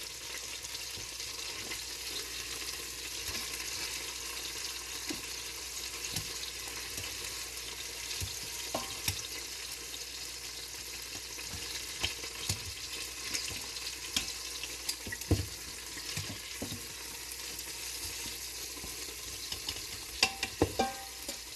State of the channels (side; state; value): both; identical; correlation 1.00